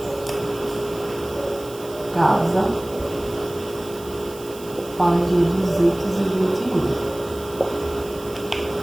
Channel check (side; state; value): right; noise; hiss, 18 dB below the sound